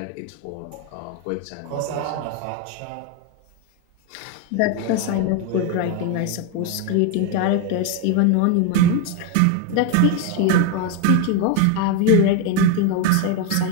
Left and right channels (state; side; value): different; both; correlation 0.02